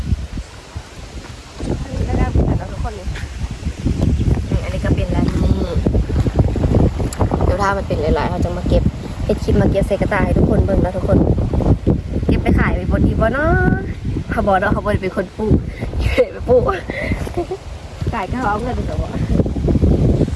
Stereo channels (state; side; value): identical; both; correlation 1.00